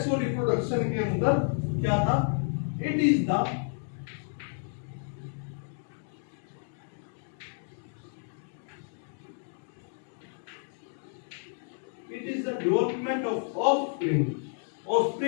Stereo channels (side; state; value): right; silent; 57 dB below the other